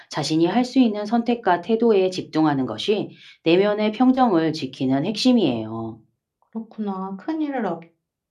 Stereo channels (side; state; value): both; identical; correlation 1.00